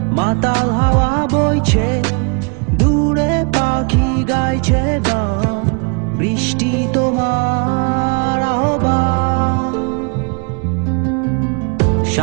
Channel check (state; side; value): quieter; left; 33.6 dB